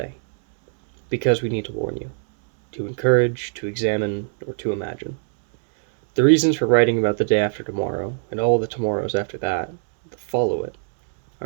Because we need to warn you, to encourage, to examine, or to imagine. The reasons for writing about the day after tomorrow, and all the tomorrows after that follow it,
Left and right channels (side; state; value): left; silent; 63 dB below the other